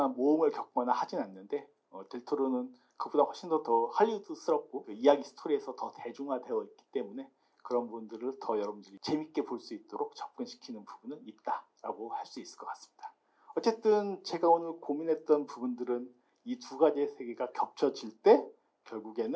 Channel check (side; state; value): both; identical; correlation 1.00